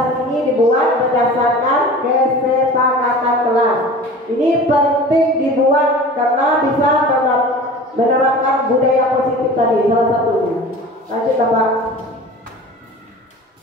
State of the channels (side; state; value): both; normal; correlation 0.39